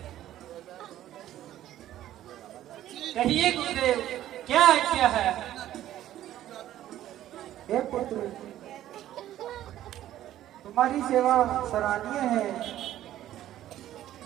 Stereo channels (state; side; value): quieter; left; 12.9 dB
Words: कहिए गुरुदेव, क्या आज्ञा है? हे पुत्र, तुम्हारी सेवा सराहनीय है।